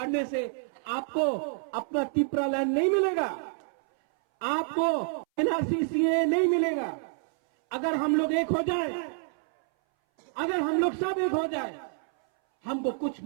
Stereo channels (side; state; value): left; silent; 59 dB below the other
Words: से आपको अपना तिप्रा लैंड नहीं मिलेगा, आपको एनआरसी नहीं मिलेगा। अगर हम लोग एक हो जाए, अगर हम लोग सब एक हो जाए, हमको कुछ